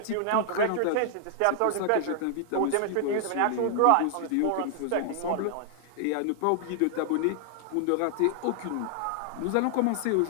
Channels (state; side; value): different; both; correlation 0.00